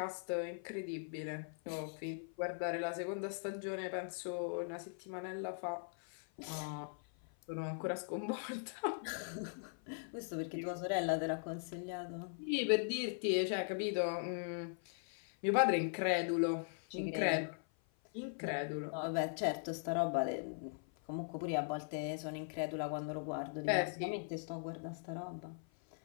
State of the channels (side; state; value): right; silent; 51 dB below the other